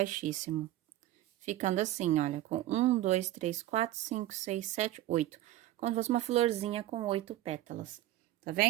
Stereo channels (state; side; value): quieter; left; 14.8 dB